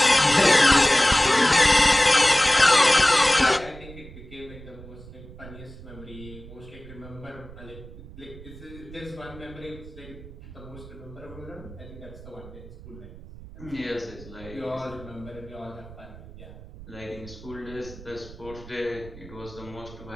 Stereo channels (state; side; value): noise; right; rumble, 17 dB below the sound